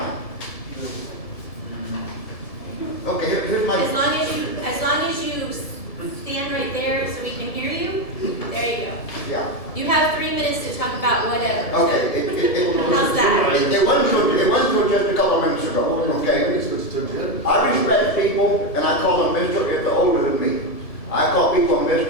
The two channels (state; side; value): late; right; 1.7 ms